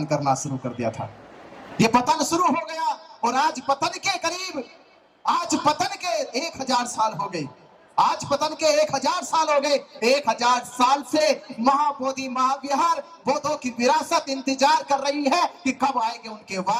करना शुरू कर दिया था। ये पतन शुरू हो गया और आज पतन के करीब, आज पतन के 1000 साल हो गए। आज पतन के 1000 साल हो गए। 1000 साल से महाबोधि महाविहार बौद्धों की विरासत इंतजार कर रही है कि कब आएंगे उनके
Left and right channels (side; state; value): both; identical; correlation 1.00